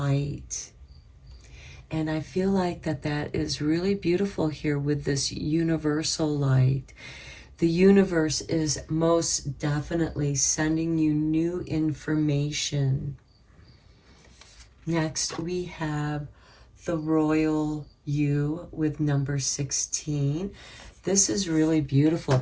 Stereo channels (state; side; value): identical; both; correlation 1.00